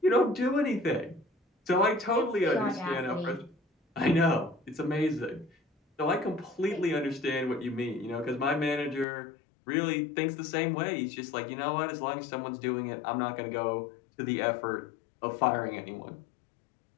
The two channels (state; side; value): drops out; right; at 9.1 s